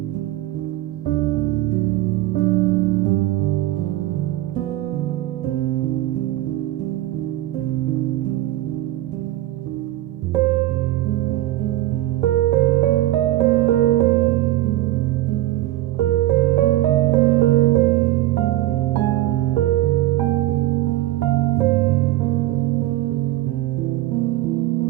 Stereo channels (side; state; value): left; quieter; 15.6 dB